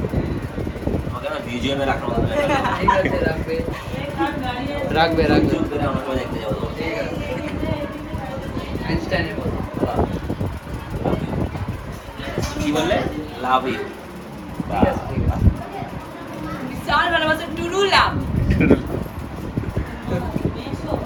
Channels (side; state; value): both; identical; correlation 1.00